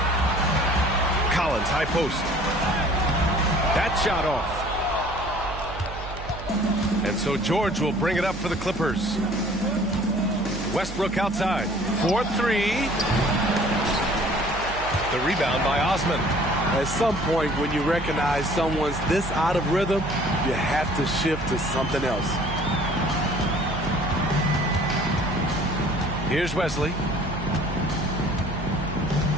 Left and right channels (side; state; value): right; noise; hum, 10 dB below the sound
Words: Collins, high post. That shot off. And so George will bring it up for the Clippers. Westbrook outside. 4-3. The rebound by Osman. At some point, when you recognize someone's this out of rhythm, you have to shift to something else. Here's Wesley.